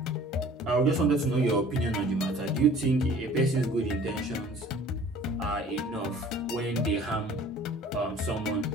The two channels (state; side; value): normal; both; correlation 0.49